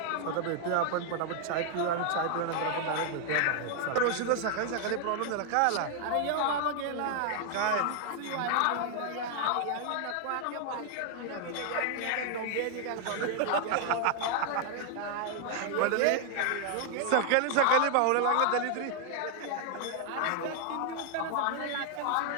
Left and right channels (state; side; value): different; both; correlation 0.00